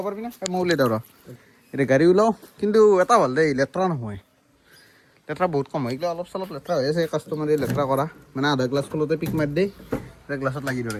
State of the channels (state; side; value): identical; both; correlation 1.00